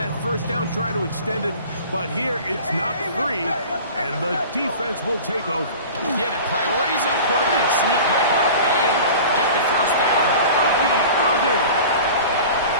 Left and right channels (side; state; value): both; inverted; correlation -0.39